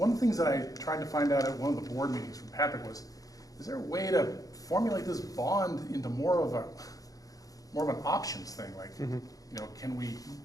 of the things that I tried to find out at one of the board meetings from Patrick was, is there a way to formulate this bond into more of an options thing? Like, you know,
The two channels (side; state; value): right; late; 0.17 ms